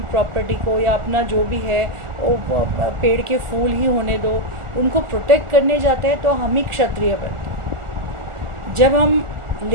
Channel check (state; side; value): late; left; 1.4 ms